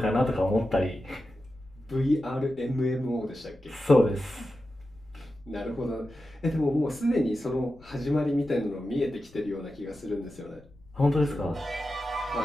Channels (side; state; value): left; noise; rumble, 25 dB below the sound